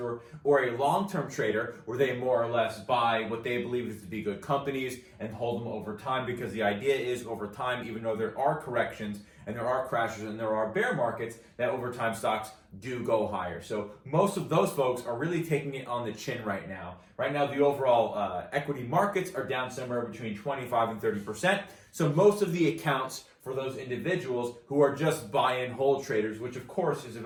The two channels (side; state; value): both; identical; correlation 1.00